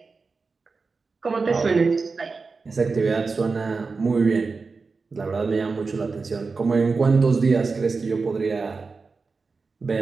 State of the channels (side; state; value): left; quieter; 4.4 dB